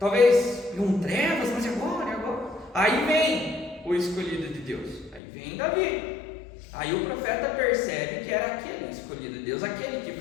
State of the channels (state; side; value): drops out; right; at 5.2 s